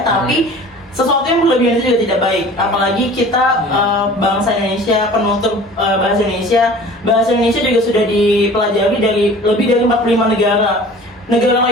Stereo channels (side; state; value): both; normal; correlation 0.44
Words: tapi sesuatu yang berlebihan itu juga tidak baik. Apalagi kita bangsa Indonesia, penutur bahasa Indonesia. Bahasa Indonesia juga sudah dipelajari dari lebih dari 45 negara. Negara